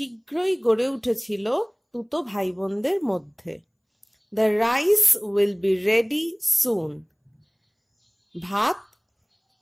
গড়ে উঠেছিল তুতো ভাই বোনদের মধ্যে। The rice will be ready soon. ভাত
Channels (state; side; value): identical; both; correlation 1.00